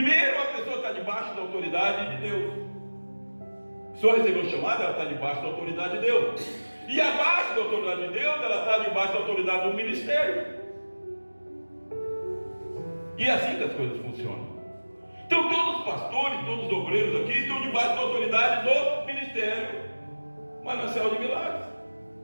a pessoa está debaixo da autoridade de Deus. A pessoa recebeu o chamado, ela está debaixo da autoridade de Deus. E abaixo da autoridade de Deus, ela está debaixo da autoridade do ministério. E é assim que as coisas funcionam. Então todos os pastores, todos os obreiros aqui estão debaixo da autoridade do ministério. Manancial de Milagres.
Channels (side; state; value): both; inverted; correlation -1.00